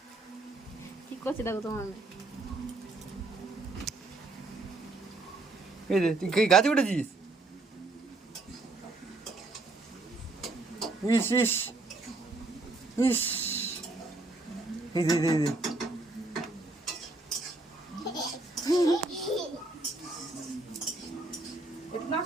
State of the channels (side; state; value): left; quieter; 3.1 dB